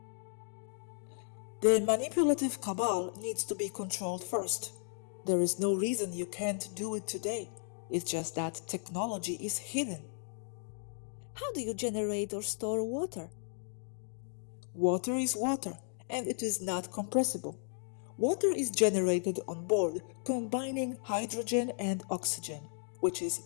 The manipulative cabal needs to be controlled first. There is no reason you can't do it today. It's just that technology is hidden. How do you generate or store water? Water is water, and it is not compressible. Water is generated on board, combining hydrogen and oxygen, which is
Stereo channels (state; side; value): silent; right; 55 dB below the other